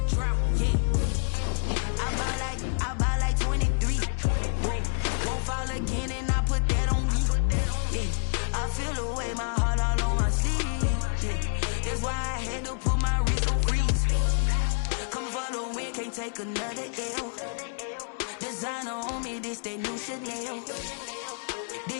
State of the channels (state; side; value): silent; right; 59 dB below the other